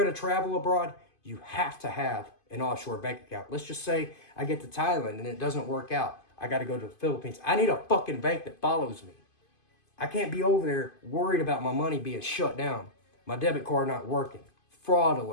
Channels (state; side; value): late; right; 2.5 ms